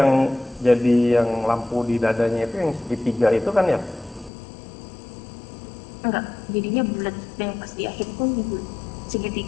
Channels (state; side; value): drops out; right; at 4.3 s